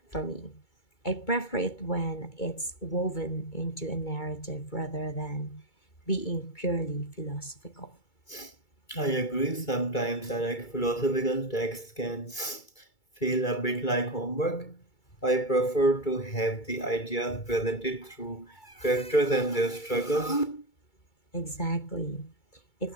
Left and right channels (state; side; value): late; right; 2.3 ms